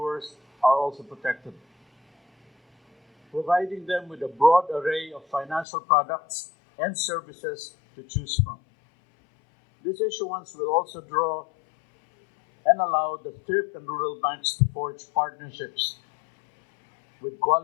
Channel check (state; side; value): drops out; right; at 5.7 s